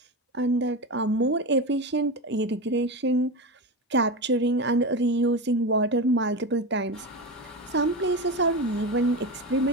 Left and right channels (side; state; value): both; normal; correlation 0.20